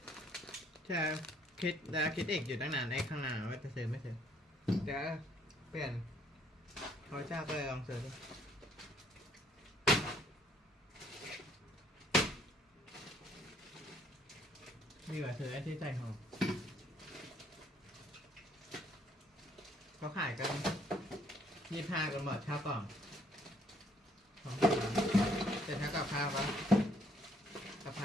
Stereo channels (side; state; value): both; normal; correlation 0.65